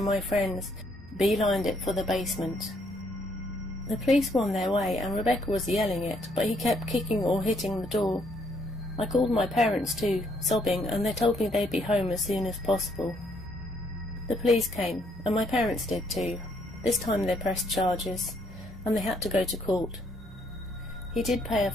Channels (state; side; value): normal; both; correlation 0.70